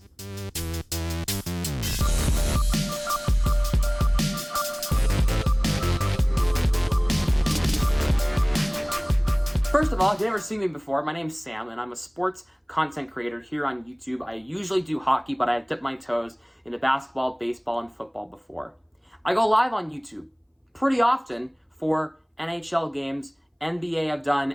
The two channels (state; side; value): identical; both; correlation 1.00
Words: First of all, if you've never seen me before, my name's Sam, and I'm a sports content creator here on YouTube. I usually do hockey, but I've dipped my toes into basketball, baseball, and football before. I go live on YouTube pretty often for NHL games, NBA I've